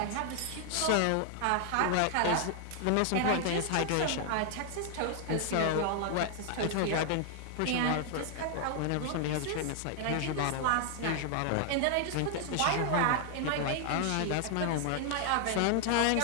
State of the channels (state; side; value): different; both; correlation 0.00